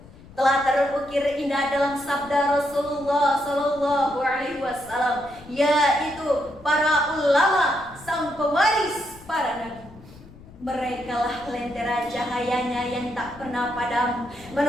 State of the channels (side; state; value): left; noise; rumble, 21 dB below the sound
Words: telah terukir indah dalam sabda Rasulullah sallallahu alaihi wasallam, yaitu para ulama, sang pewaris para nabi. Merekalah lentera cahayanya yang tak pernah padam,